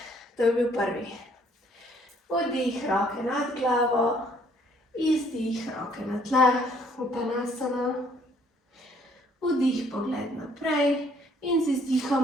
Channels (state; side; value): normal; both; correlation 0.63